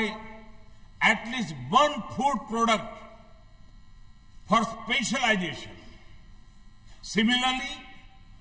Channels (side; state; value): both; identical; correlation 1.00